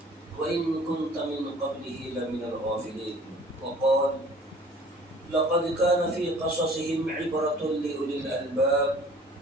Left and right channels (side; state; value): both; normal; correlation 0.50